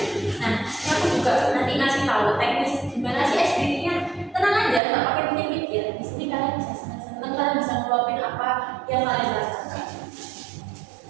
Nah, ini aku juga nanti ngasih tahu teknis gimana sih SPT-nya. Tenang aja, nggak pakai pikir-pikir. Di sini kalian bisa senang-senang, kalian bisa ngeluapin apa yang kalian rasakan.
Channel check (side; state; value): left; drops out; at 4.8 s